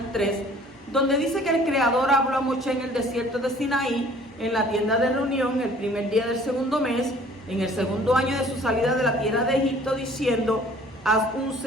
3, donde dice que el Creador habló a Moshe en el desierto de Sinaí, en la tienda de reunión, el primer día del segundo mes, en el segundo año de su salida de la tierra de Egipto, diciendo: haz un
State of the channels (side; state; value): both; normal; correlation 0.53